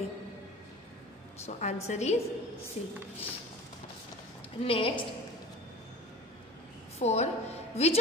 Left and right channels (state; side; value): normal; both; correlation 0.38